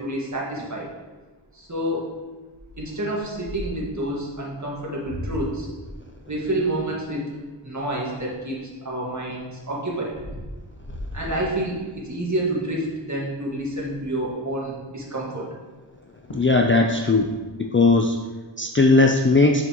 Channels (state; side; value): normal; both; correlation 0.26